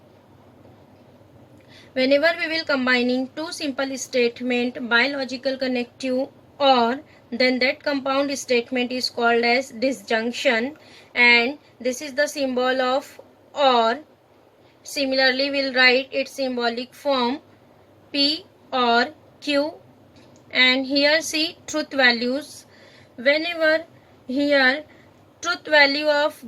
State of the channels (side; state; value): both; identical; correlation 1.00